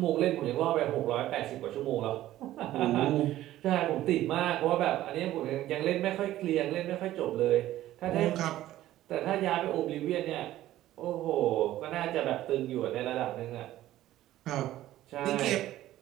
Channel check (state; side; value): quieter; left; 14.3 dB